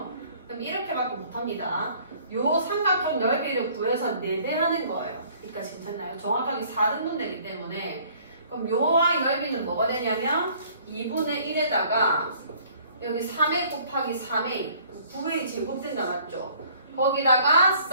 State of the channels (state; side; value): inverted; both; correlation -0.57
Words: 그럼 이렇게밖에 못합니다. 요 삼각형 넓이를 구해서 4배 하는 거예요. 그러니까 괜찮나요? 정확하게 4등분 되기 때문에 그럼 요 y 넓이는 뭐가 되냐면 2분의 1에다가 여기 3a 곱하기 3a 9a 제곱된다. 맞죠? 거기다가